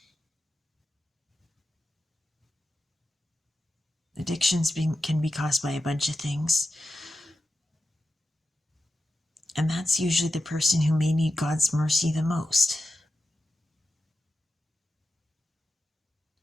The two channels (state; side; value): normal; both; correlation 0.91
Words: Addictions can be caused by a bunch of things. And that's usually the person who may need God's mercy the most.